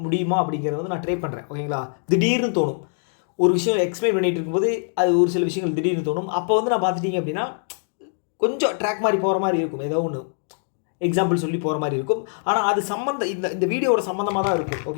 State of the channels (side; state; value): right; silent; digital silence